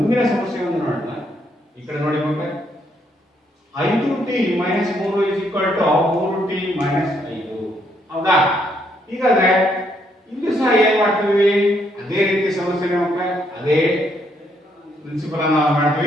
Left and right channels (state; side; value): normal; both; correlation 0.73